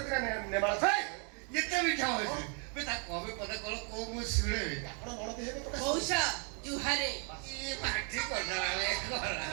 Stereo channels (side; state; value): left; quieter; 38.5 dB